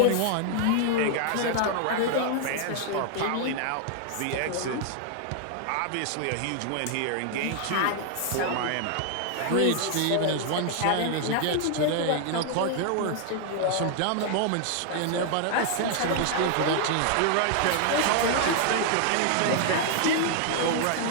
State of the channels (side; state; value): both; different; correlation 0.00